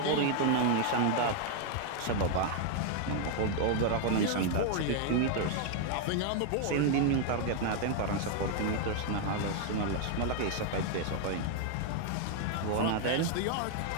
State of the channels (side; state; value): both; different; correlation 0.00